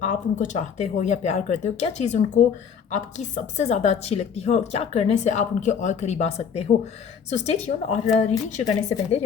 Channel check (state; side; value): quieter; right; 7.0 dB